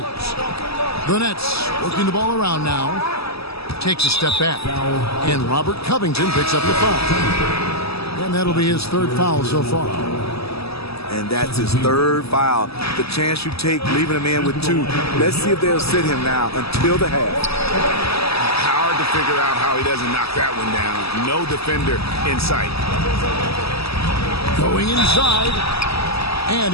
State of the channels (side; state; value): right; late; 0.78 ms